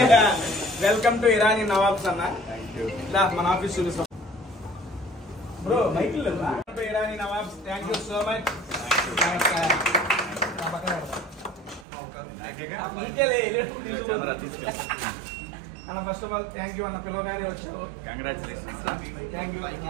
వెల్కమ్ టు ఇరానీ నవాబ్స్ అన్న. మన ఆఫీస్ చూపిస్తాం bro. Michael Irani Nawabs. Thank you so much. అన్న first of all thank you అన్న, పిలవగానే వచ్చావు. కంగ్రాచులేషన్స్. Thank you.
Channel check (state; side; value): drops out; left; at 11.9 s